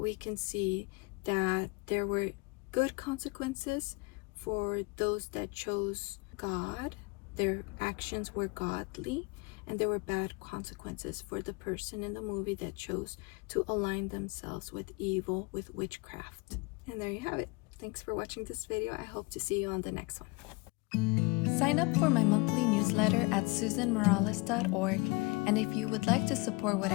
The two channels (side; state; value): right; quieter; 26.5 dB